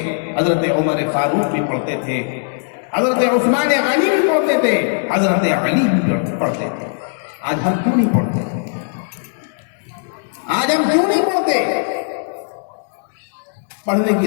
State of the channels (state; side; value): silent; right; digital silence